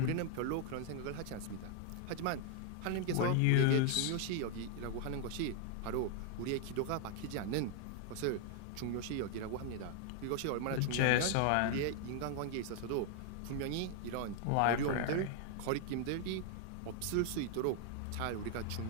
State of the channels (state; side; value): different; both; correlation 0.00